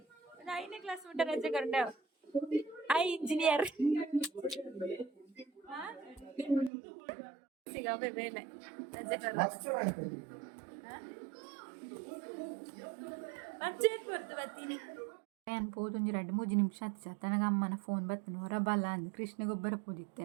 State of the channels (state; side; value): drops out; left; at 6.7 s